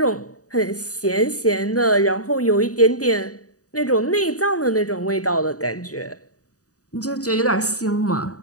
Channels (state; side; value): late; right; 0.66 ms